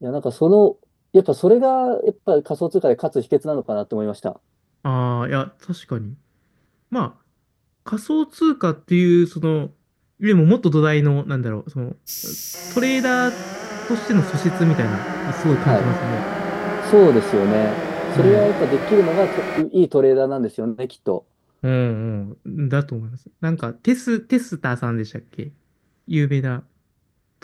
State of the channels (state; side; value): identical; both; correlation 1.00